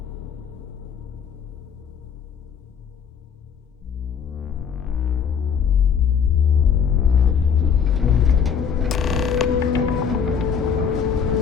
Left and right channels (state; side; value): quieter; right; 7.0 dB